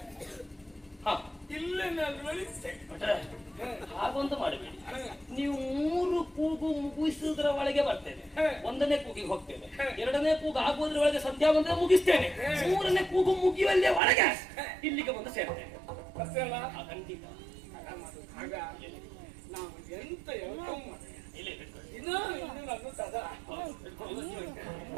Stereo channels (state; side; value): drops out; left; at 14.0 s